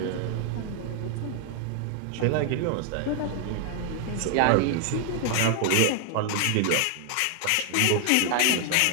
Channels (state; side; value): different; both; correlation 0.00